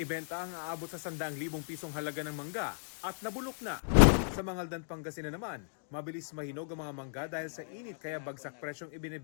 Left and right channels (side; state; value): right; silent; digital silence